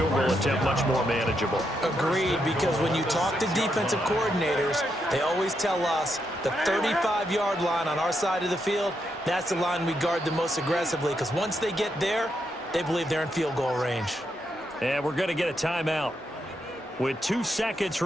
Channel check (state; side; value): normal; both; correlation 0.81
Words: goal attempt much more manageable. Agreed, because when you talk to defensive coordinators, they always tell us the 35-yard line on our side of the field, that's the line we guard the most aggressively, because once they get there, they believe they're in field goal range. And we're going to get a timeout with 2 seconds